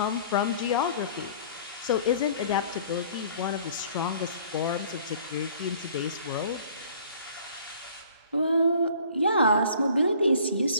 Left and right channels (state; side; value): inverted; both; correlation -0.52